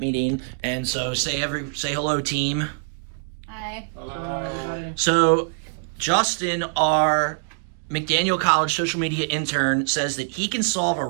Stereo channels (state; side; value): silent; left; digital silence